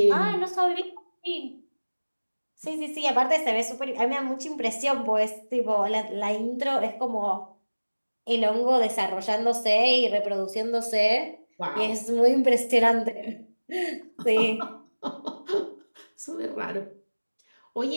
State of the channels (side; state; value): both; inverted; correlation -1.00